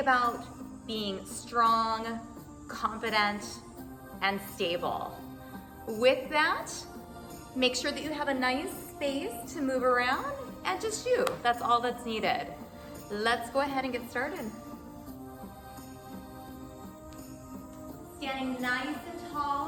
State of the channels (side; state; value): both; identical; correlation 1.00